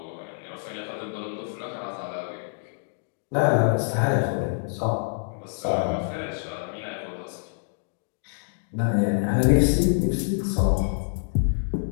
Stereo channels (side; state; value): right; silent; digital silence